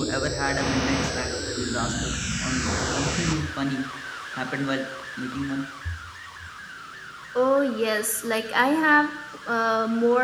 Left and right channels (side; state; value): both; identical; correlation 1.00